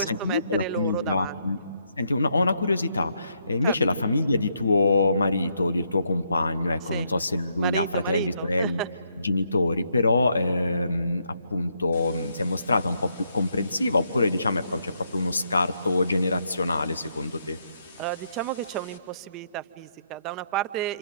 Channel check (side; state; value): both; inverted; correlation -0.76